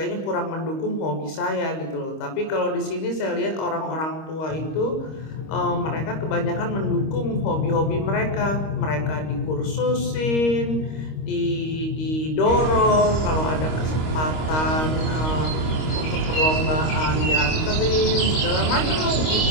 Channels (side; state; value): right; late; 26 ms